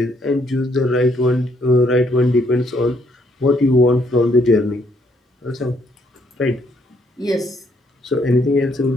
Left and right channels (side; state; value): both; normal; correlation 0.69